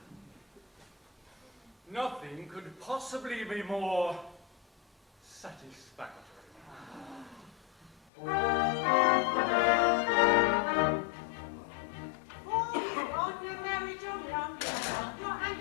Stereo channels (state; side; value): drops out; right; at 8.0 s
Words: Nothing could possibly be more satisfactory.